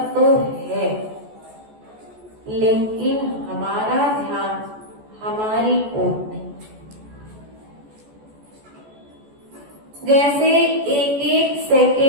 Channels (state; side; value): late; left; 14 ms